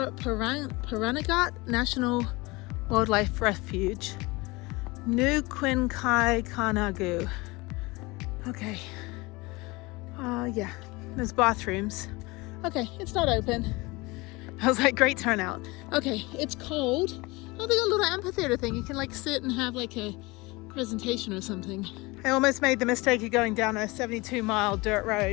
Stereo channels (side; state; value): right; quieter; 23.8 dB